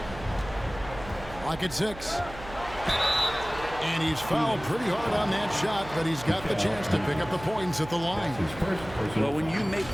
Clock at 6. And he's fouled pretty hard on that shot, but he's got the chance to pick up the points at the line. Well, when you make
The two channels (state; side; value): noise; right; hum, 14 dB below the sound